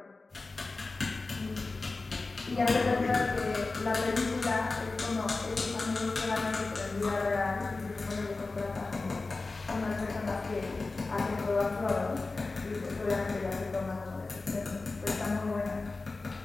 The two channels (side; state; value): right; quieter; 3.6 dB